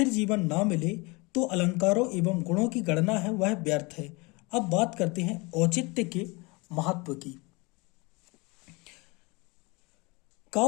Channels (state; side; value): quieter; right; 26.6 dB